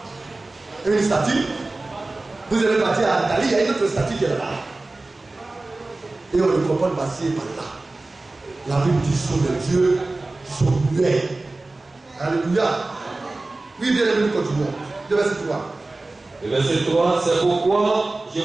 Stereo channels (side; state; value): left; quieter; 3.1 dB